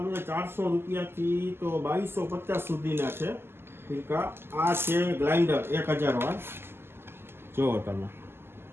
છે 400 રૂપિયાથી તો 2250 સુધીના છે ફિરકા. આ છે ગ્લાઇન્ડર 1000 વાર. જુઓ તમે,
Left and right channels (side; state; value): left; late; 0.12 ms